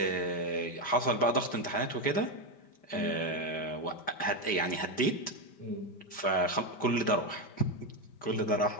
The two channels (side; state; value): right; late; 5.1 ms